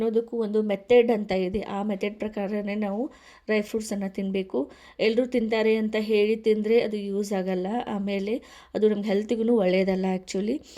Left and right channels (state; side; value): identical; both; correlation 1.00